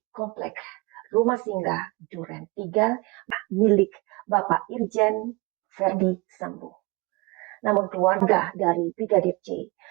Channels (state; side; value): quieter; left; 25.1 dB